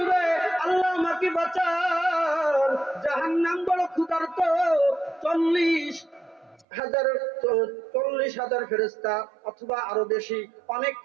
আল্লাহ আমাকে বাঁচান, জাহান্নাম বড় ক্ষুধার্ত। 40,000 ফেরেশতা অথবা আরো বেশি, অনেক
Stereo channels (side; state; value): left; drops out; at 6.7 s